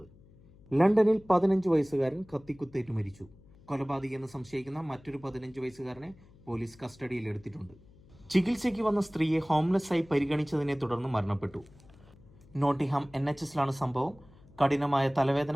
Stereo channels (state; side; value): noise; left; hum, 25 dB below the sound